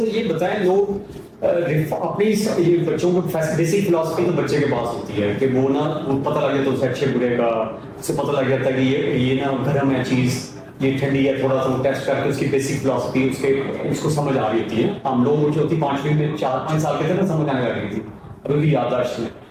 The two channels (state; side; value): identical; both; correlation 1.00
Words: یہ بتائیں لوگ اپنی یہ بچوں کو بیسک فلاسفی تو بچے کے پاس ہوتی ہے کہ وہ نا پتہ لگ جاتا ہے اسے اچھے برے کا اسے پتہ لگ جاتا ہے کہ یہ نا گرم ہے چیز یہ ٹھنڈی ہے تھوڑا سا ٹیسٹ کر کے اس کی بیسک فلاسفی اس کو سمجھ آ رہی ہوتی ہے ہم لوگوں جو ہوتی 5ویں میں 4-5 سال کے تھے نا سمجھ آنے لگی تھی ابھی بھی یادداشت میں